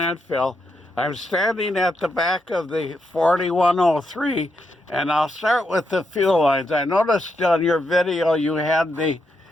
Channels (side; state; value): both; normal; correlation 0.82